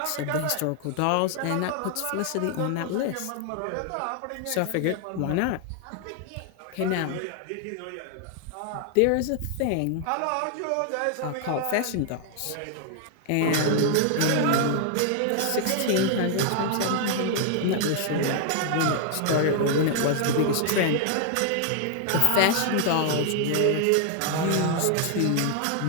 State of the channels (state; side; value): different; both; correlation 0.00